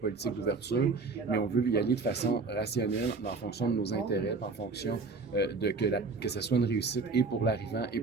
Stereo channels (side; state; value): left; quieter; 4.1 dB